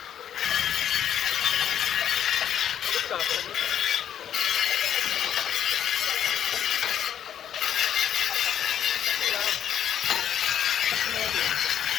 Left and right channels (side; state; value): right; quieter; 9.8 dB